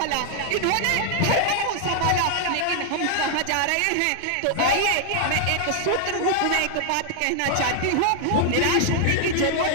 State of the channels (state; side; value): different; both; correlation 0.00